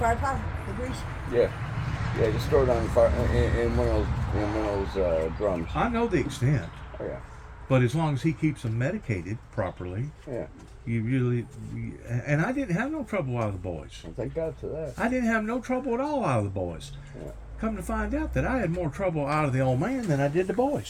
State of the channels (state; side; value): identical; both; correlation 1.00